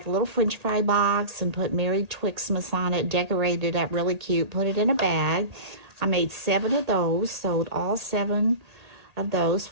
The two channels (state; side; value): late; left; 1.8 ms